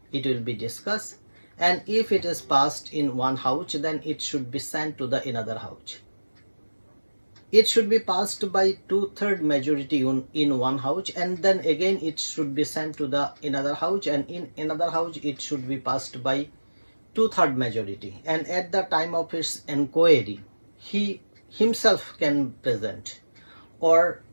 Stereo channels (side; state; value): both; inverted; correlation -1.00